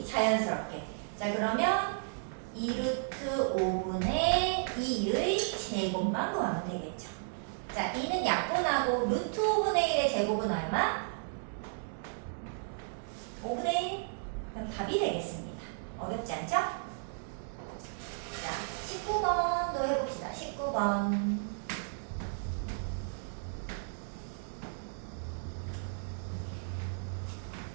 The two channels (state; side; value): silent; left; digital silence